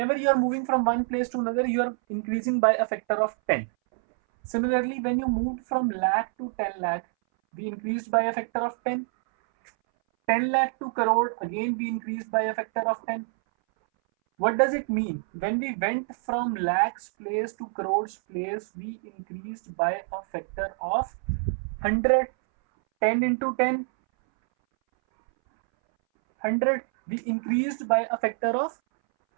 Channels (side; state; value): left; silent; 60 dB below the other